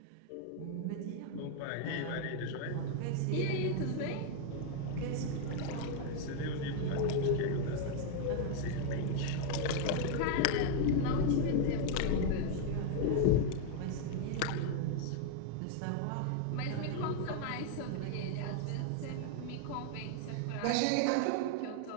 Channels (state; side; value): different; both; correlation 0.00